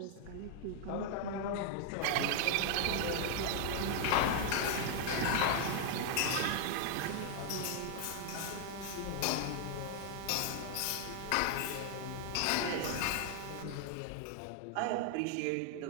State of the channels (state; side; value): different; both; correlation 0.00